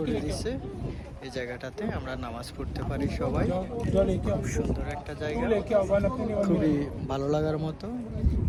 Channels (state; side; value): identical; both; correlation 1.00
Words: দিয়েছে। এই জায়গাটাতে আমরা নামাজ পড়তে পারি সবাই। খুব সুন্দর একটা জায়গা, খুবই ভালো লাগার মতো।